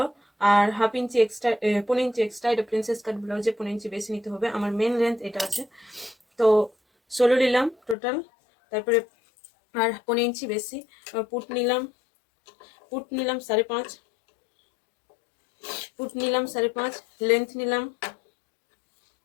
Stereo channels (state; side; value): drops out; right; at 8.0 s